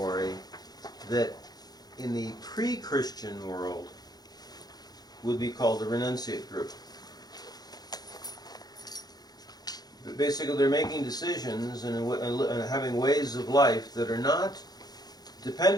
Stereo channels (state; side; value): late; right; 0.19 ms